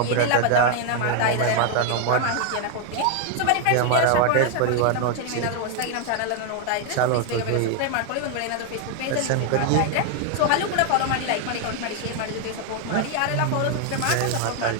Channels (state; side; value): different; both; correlation 0.00